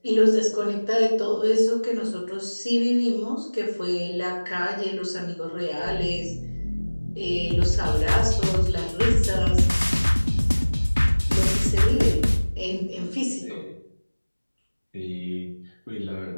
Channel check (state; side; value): inverted; both; correlation -1.00